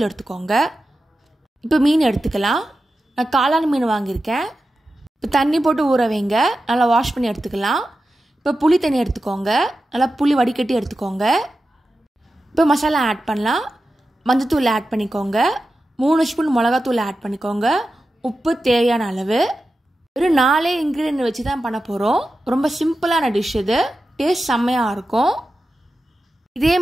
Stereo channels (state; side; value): normal; both; correlation 0.92